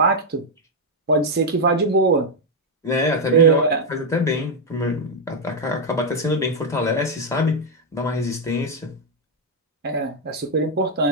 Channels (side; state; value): both; normal; correlation 0.00